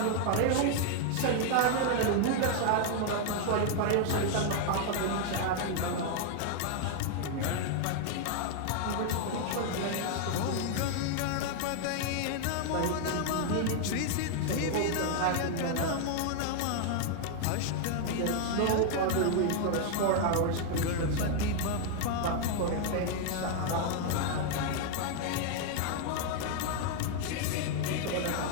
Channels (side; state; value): both; different; correlation 0.00